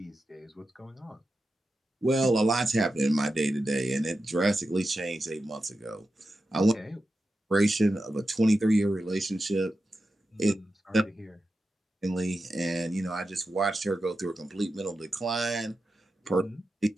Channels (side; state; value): both; normal; correlation 0.91